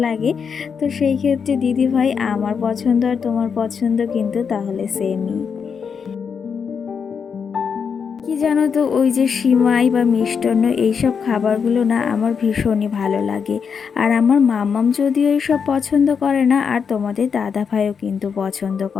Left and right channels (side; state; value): right; quieter; 6.4 dB